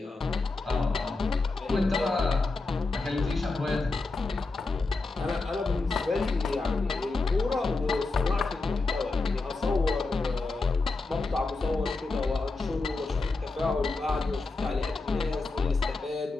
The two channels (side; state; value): right; quieter; 3.5 dB